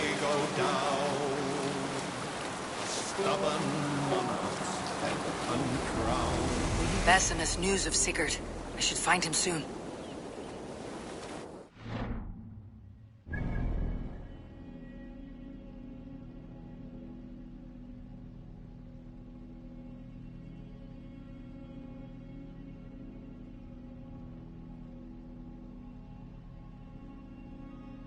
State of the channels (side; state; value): both; identical; correlation 1.00